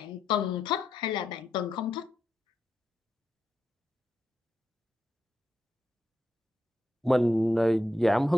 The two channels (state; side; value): normal; both; correlation 0.84